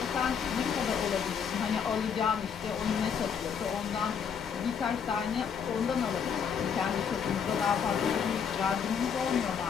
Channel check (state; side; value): quieter; right; 7.1 dB